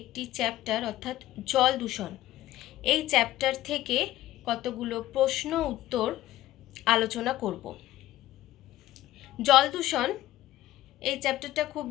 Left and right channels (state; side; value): quieter; right; 14.9 dB